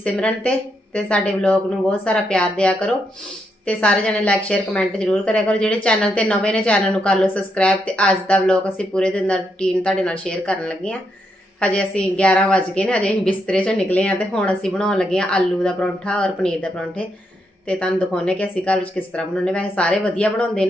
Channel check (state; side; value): normal; both; correlation 0.80